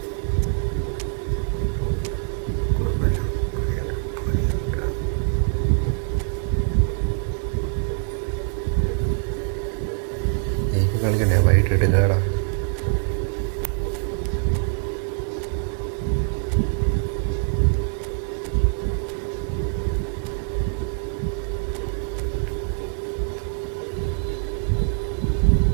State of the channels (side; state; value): left; silent; 63 dB below the other